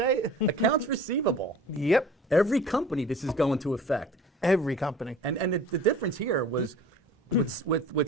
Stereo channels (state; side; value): normal; both; correlation 0.44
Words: it. Accounts receivable. Yep. Every company this is going to affect. Every company. And the difference here was with